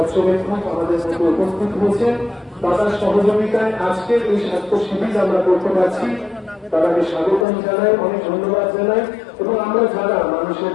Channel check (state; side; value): drops out; right; at 7.5 s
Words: আমাদের মধ্যে উপস্থিত হয়েছেন। দাদার সহযোগিতায় আজকের এই স্বাস্থ্য শিবির আমরা করতে পারছি। তাদেরকে স্বাগতম জানাই, অনেক ধন্যবাদ জানাই। এবং আমরা যারা মানুষের